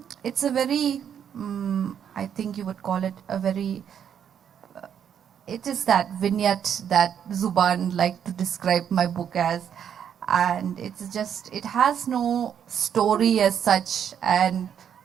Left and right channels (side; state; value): left; quieter; 8.6 dB